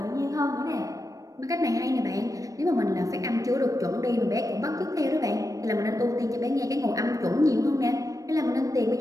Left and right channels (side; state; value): left; late; 0.16 ms